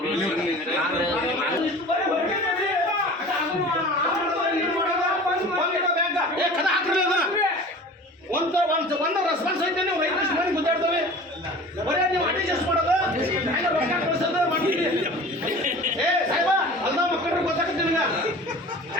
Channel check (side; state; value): both; normal; correlation 0.40